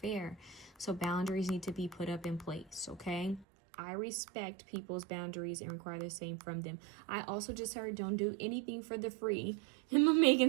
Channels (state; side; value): drops out; left; at 3.5 s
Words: So boundaries need to be put up in place, okay? I respect people's boundaries and require the same from them. I also just heard don't do anything for the free. And my Megan